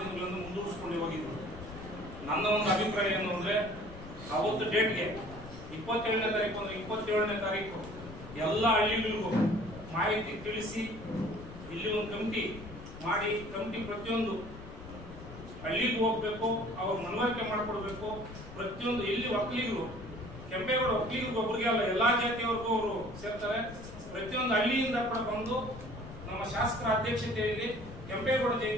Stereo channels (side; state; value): left; noise; rumble, 14 dB below the sound